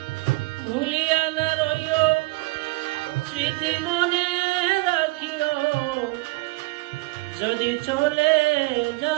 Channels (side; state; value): left; quieter; 22.6 dB